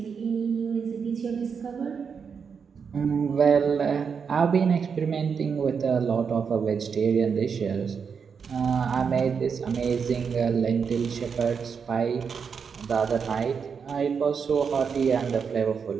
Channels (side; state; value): left; quieter; 6.2 dB